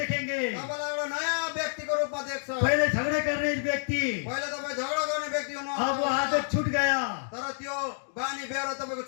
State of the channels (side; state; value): right; silent; digital silence